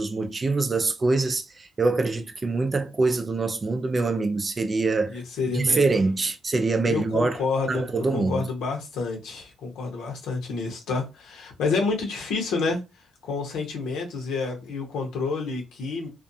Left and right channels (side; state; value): both; normal; correlation 0.80